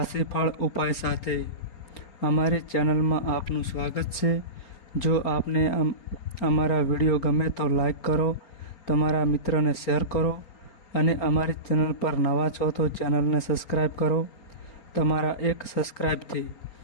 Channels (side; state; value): right; late; 4.3 ms